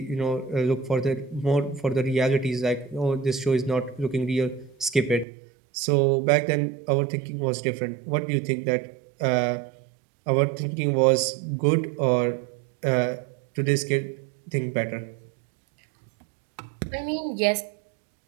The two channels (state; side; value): drops out; left; at 5.2 s